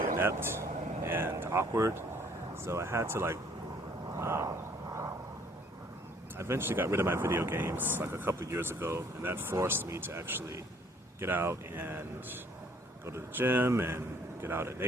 inept and awkward. So I had to I eventually got rid of my video games like a couple of years ago, and that forced me to actually get out and go to the gym and get out in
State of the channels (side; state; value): both; normal; correlation 0.60